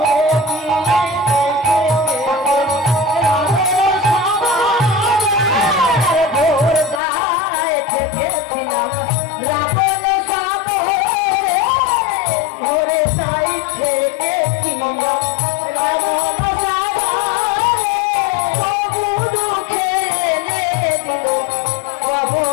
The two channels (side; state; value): right; drops out; at 7.0 s